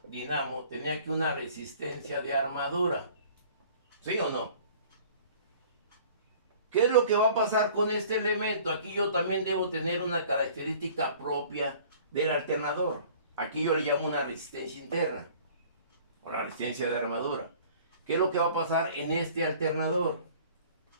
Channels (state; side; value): inverted; both; correlation -0.50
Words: dinamo, tenía aquí una resistencia de armadura. ¿Sí o no? ¿Qué es lo que va a pasar con este elemento? Aquí yo también debo tener una característica propia del alternador. Aquí yo le llamo una resistencia interna, o la resistencia de armadura. ¿Qué es lo que va a pasar en este alternador?